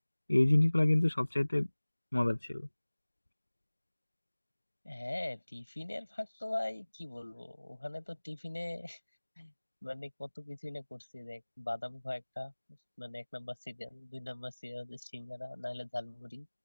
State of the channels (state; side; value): inverted; both; correlation -1.00